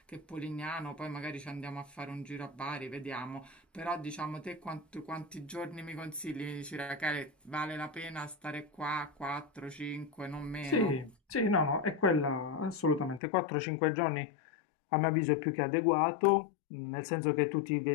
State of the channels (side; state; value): right; drops out; at 13.2 s